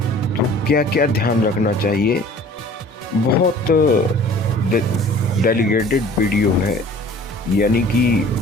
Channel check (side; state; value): both; normal; correlation 0.48